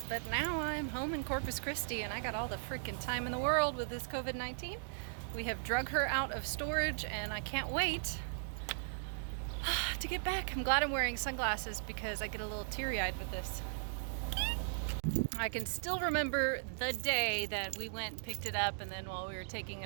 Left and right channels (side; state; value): left; silent; digital silence